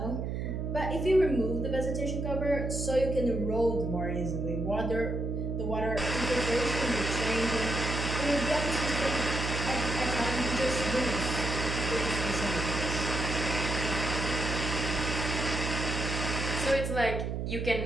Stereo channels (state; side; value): noise; right; hum, 2 dB below the sound